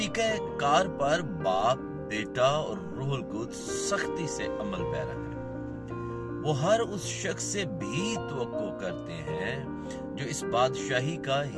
کار پر باپ، بیٹا اور روح القدس سختی سے عمل پیرا ہے۔ وہ ہر اس شخص سے بھی توقع کرتے ہیں جو اس بادشاہی کا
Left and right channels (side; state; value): both; identical; correlation 1.00